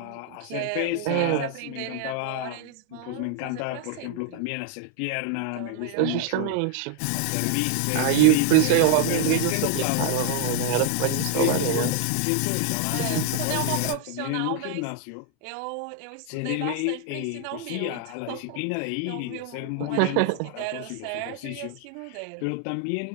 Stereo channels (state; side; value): different; both; correlation 0.00